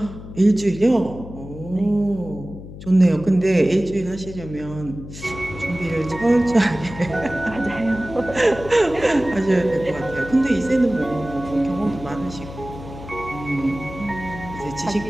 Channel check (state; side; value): noise; left; hum, 13 dB below the sound